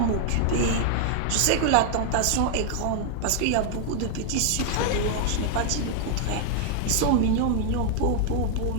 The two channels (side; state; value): both; different; correlation 0.00